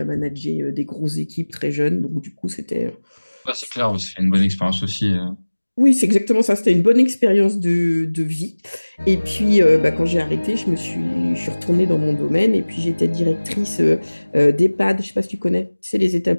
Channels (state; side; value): inverted; both; correlation -1.00